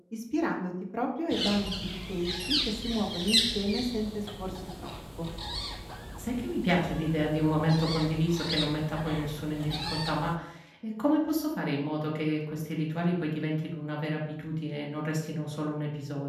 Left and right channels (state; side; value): identical; both; correlation 1.00